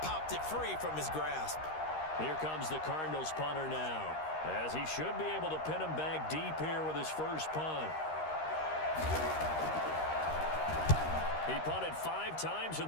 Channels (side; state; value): right; late; 13 ms